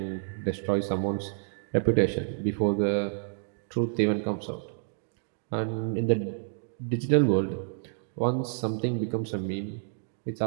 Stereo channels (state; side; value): silent; left; digital silence